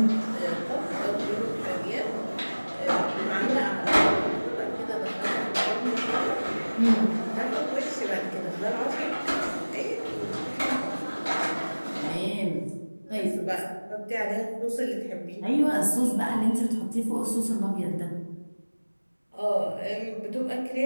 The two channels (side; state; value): both; inverted; correlation -1.00